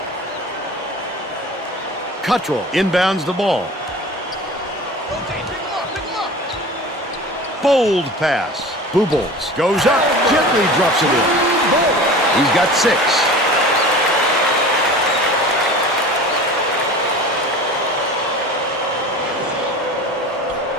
Cuttrell inbounds the ball. Bold pass. Boobles goes up, gently drops it in. He's got 6.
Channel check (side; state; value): both; normal; correlation 0.37